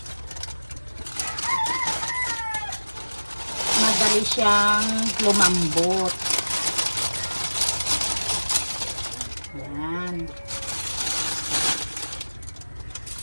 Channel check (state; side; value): inverted; both; correlation -1.00